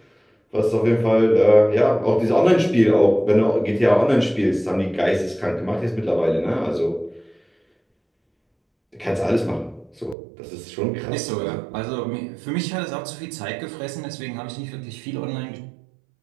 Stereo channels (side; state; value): left; drops out; at 10.2 s